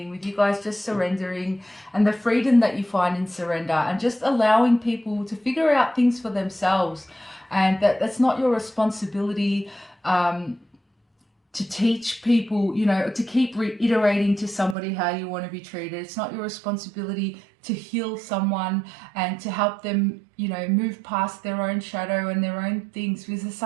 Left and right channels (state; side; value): drops out; left; at 14.8 s